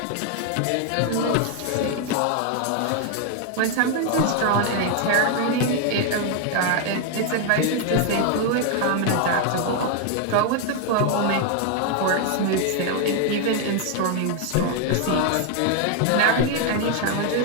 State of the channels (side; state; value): both; different; correlation 0.00